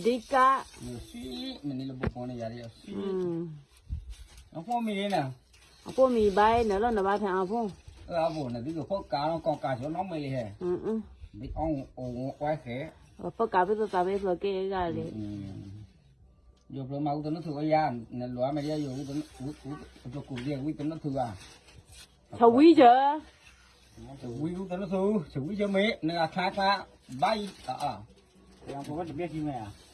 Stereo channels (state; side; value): identical; both; correlation 1.00